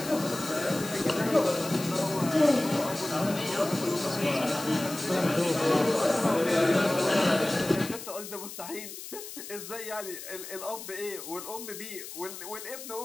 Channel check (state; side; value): noise; left; hiss, 11 dB below the sound